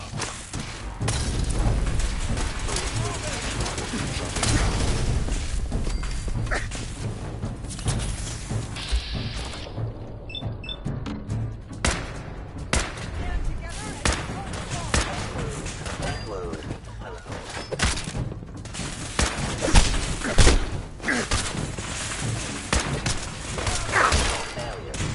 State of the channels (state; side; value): identical; both; correlation 1.00